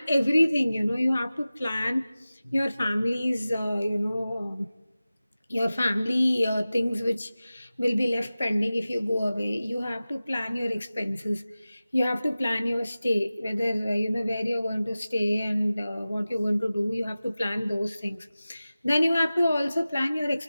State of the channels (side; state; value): both; inverted; correlation -0.96